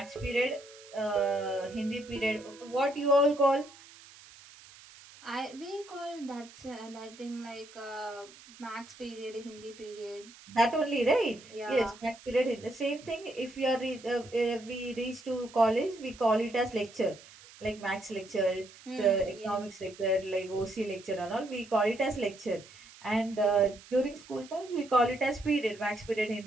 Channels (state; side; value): noise; right; hiss, 21 dB below the sound